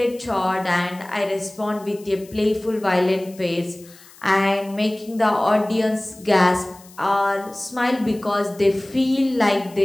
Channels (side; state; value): left; noise; hiss, 23 dB below the sound